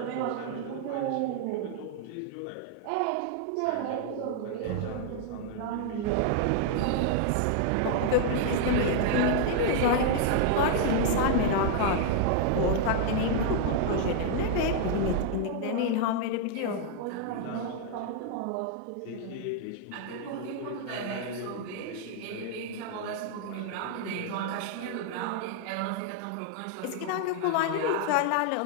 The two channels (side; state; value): both; different; correlation 0.00